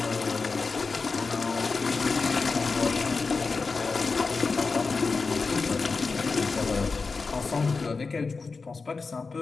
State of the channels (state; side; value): quieter; right; 4.4 dB